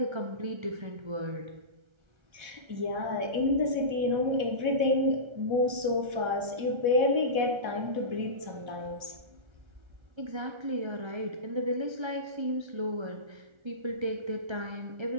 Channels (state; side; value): late; left; 1.3 ms